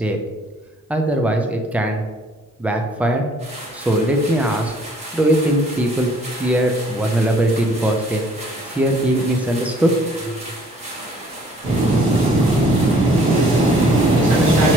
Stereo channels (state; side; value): normal; both; correlation 0.59